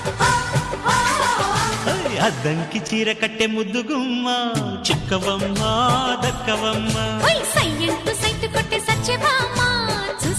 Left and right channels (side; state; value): both; identical; correlation 1.00